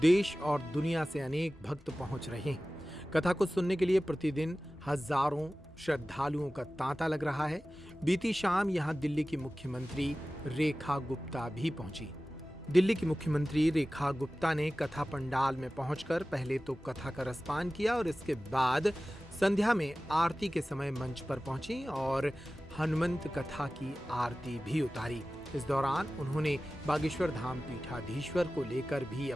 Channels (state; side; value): normal; both; correlation 0.96